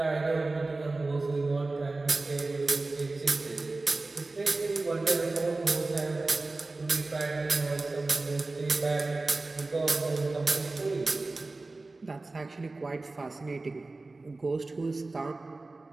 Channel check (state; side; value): quieter; left; 3.3 dB